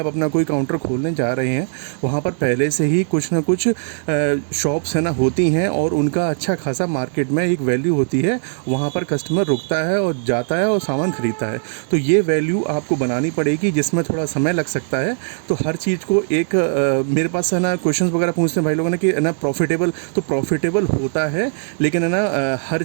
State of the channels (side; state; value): left; silent; digital silence